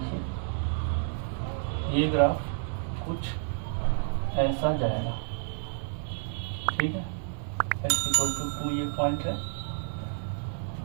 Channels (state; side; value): silent; left; digital silence